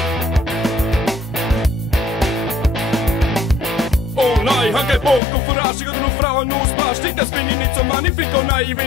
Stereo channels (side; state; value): right; drops out; at 5.2 s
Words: Oh nein, han kein Bock auf Verarschung oder auf Frauen aus Plastik, das bin ich nicht so magnifik, oh nein, ich will